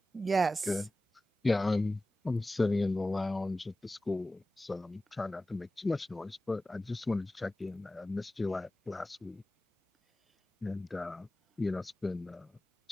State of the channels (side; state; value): both; normal; correlation 0.96